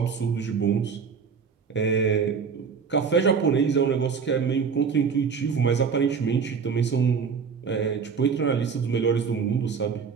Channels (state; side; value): quieter; left; 6.0 dB